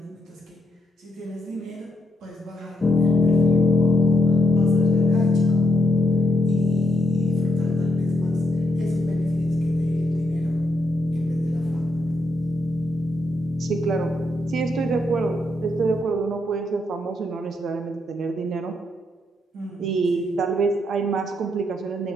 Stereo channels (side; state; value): both; normal; correlation 0.79